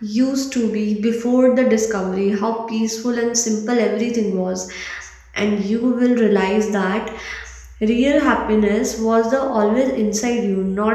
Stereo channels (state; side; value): identical; both; correlation 1.00